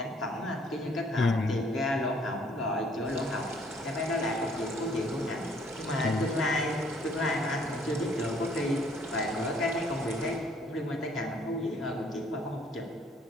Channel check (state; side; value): normal; both; correlation 0.62